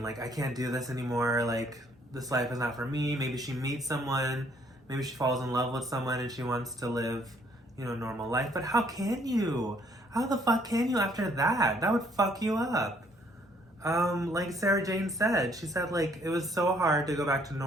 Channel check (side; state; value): both; normal; correlation 0.65